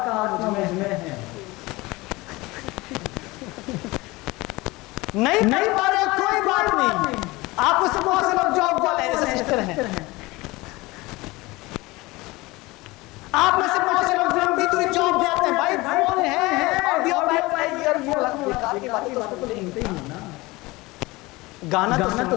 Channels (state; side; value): quieter; right; 21.7 dB